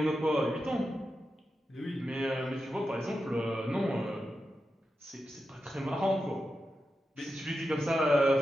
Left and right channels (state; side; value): normal; both; correlation 0.89